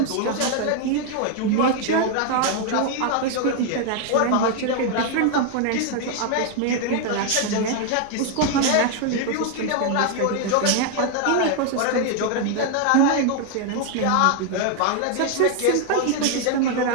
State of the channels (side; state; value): both; different; correlation 0.00